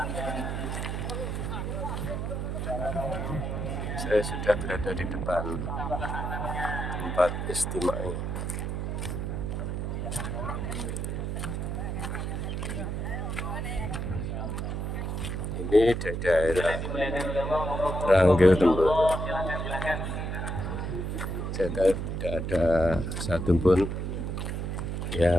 Saya sudah berada di depan tempat istimai. Ini di daerah Ranggil Temboro. Tidak ada satupun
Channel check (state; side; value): noise; right; hum, 2 dB below the sound